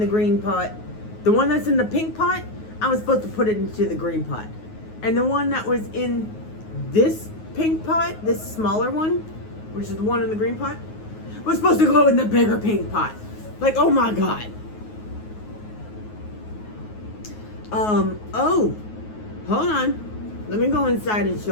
green pot. The one that's in the pink pot, I was supposed to put it into the green pot. And the one that was in this pink pot, this smaller one, which is the one in the green pot, was supposed to go in the bigger pink pot. Like, oh my God. Oh, hold on. Let me go inside and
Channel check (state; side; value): late; right; 9.4 ms